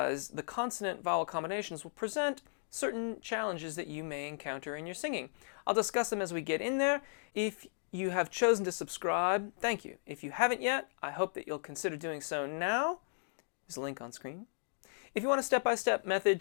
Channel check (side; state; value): right; silent; digital silence